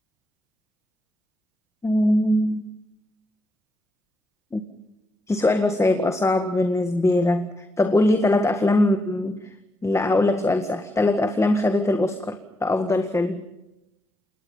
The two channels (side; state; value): both; normal; correlation 0.83